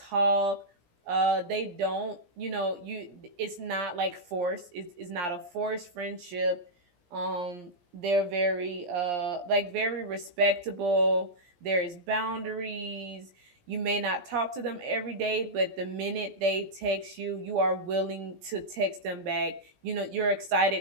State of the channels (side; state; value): left; late; 17 ms